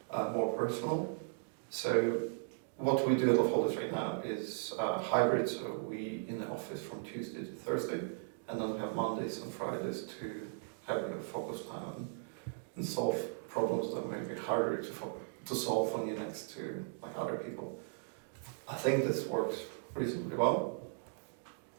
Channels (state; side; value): silent; left; digital silence